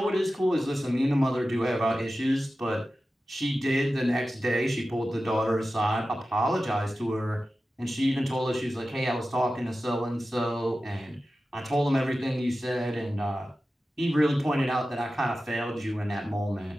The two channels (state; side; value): normal; both; correlation 0.94